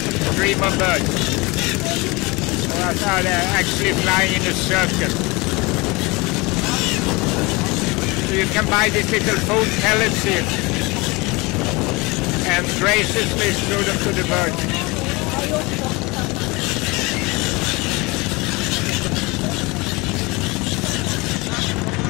stream of birds. I thought they're actually flying in a circle. So you can buy these little food pellets here and graciously throw them to the birds.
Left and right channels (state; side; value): quieter; right; 24.9 dB